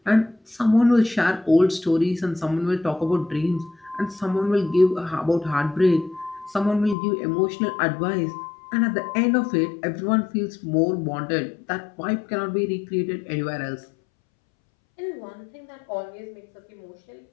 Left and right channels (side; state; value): right; drops out; at 7.0 s